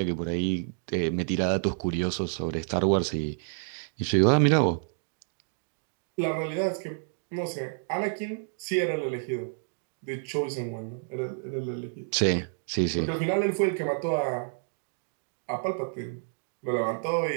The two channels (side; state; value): left; silent; digital silence